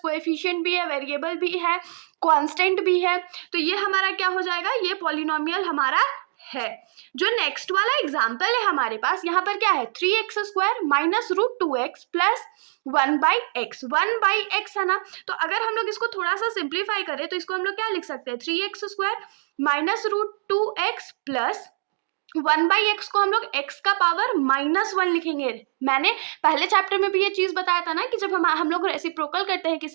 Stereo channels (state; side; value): silent; left; digital silence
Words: कोएफिशिएंट भी है, वेरिएबल भी है, कांस्टेंट भी है। तो ये हमारा क्या हो जाएगा, ये पॉलिनोमियल हमारा है। जो नेक्स्ट वाला एग्जाम्पल है हमारे पास, यहाँ पर क्या है, 3x square minus root 2x plus 1/x। 1/x है ना, तो अगर हम लोग इसको थोड़ा सा सिंप्लीफाई करें तो इसको हम लोग क्या लिख सकते हैं, 3x square minus root 2x plus 1/x को हम लोग x का पावर -1 लिखेंगे। मैंने पहले चैप्टर में भी ये चीज बताया था ना कि जब हम लोग रेसिप्रोकल करते हैं